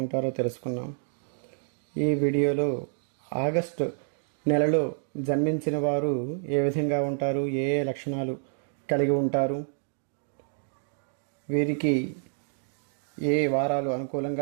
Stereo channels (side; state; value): left; silent; 59 dB below the other